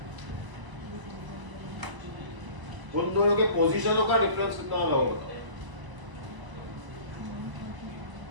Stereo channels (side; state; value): left; late; 1.0 ms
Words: उन दोनों के पोजीशनों का डिफरेंस कितना होगा बताओ?